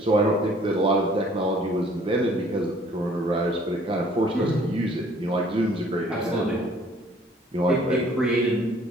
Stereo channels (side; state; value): both; normal; correlation 0.57